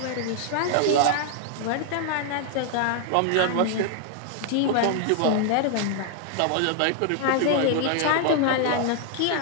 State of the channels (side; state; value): both; different; correlation 0.00